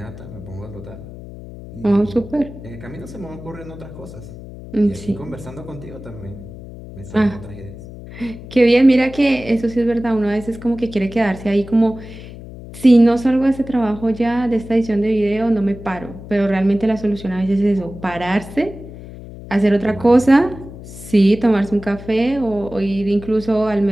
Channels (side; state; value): left; noise; hum, 14 dB below the sound